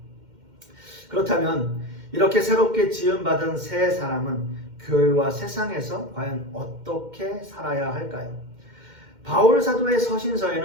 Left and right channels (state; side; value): late; left; 2.1 ms